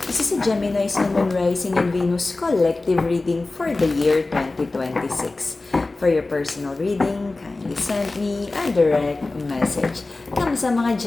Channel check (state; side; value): quieter; right; 3.2 dB